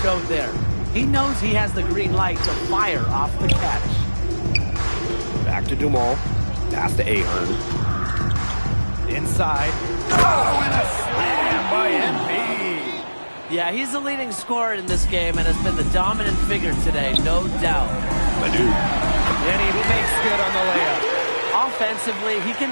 showed there. He knows he has the green light to fire off the catch. Back to Dumal. Pass to Ahern. Inside. Oh, and a slam by MP. Yeah, he's the leading scorer in this game and has been the dominant figure today, no doubt. Leduc. And he makes good on the layup. Offensively, he can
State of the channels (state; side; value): inverted; both; correlation -1.00